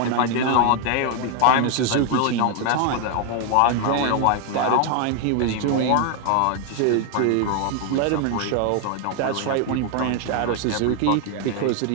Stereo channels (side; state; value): both; different; correlation 0.00